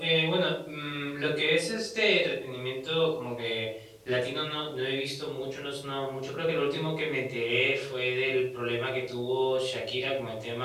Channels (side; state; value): both; identical; correlation 1.00